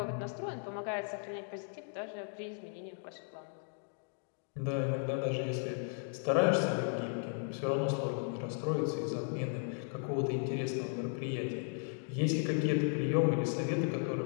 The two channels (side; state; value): right; silent; 54 dB below the other